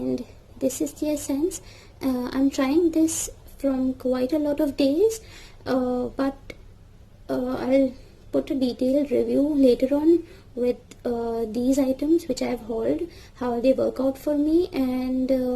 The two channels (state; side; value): identical; both; correlation 1.00